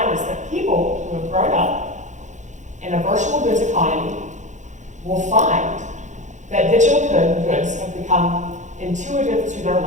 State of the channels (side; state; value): left; late; 0.35 ms